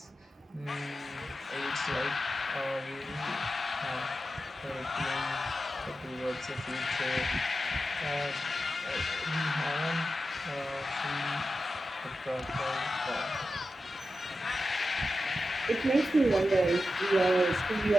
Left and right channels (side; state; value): both; normal; correlation 0.91